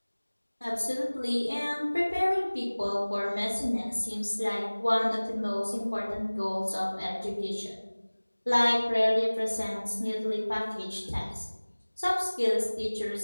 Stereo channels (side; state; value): both; inverted; correlation -1.00